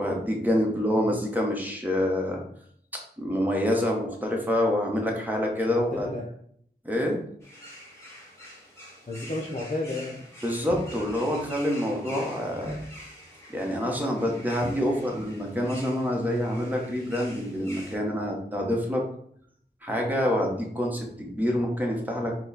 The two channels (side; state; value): both; normal; correlation 0.75